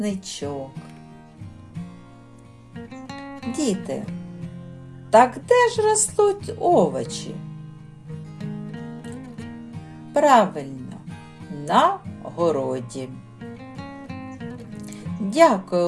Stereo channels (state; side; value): identical; both; correlation 1.00